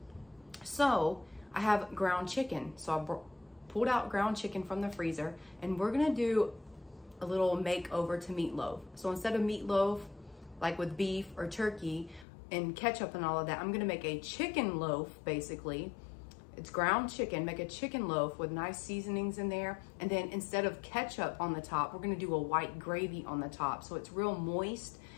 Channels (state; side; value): drops out; right; at 12.2 s